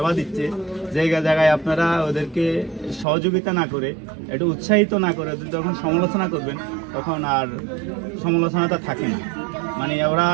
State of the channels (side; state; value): left; drops out; at 3.1 s